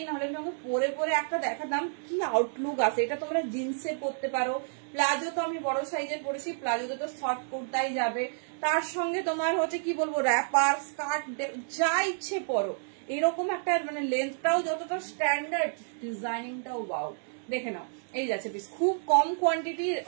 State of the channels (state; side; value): silent; left; digital silence